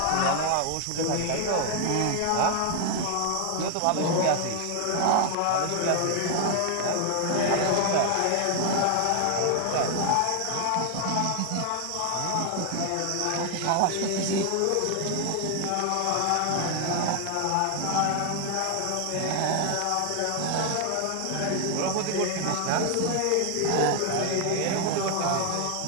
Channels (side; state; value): both; different; correlation 0.00